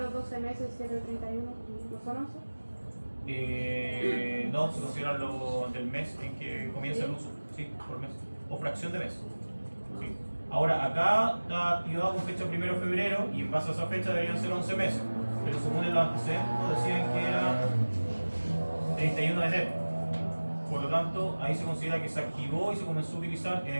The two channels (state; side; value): inverted; both; correlation -1.00